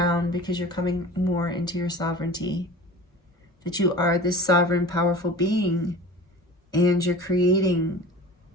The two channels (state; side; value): normal; both; correlation 0.38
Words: because you're coming more into your sovereignty, that you are this sovereign, powerful being, and you're creating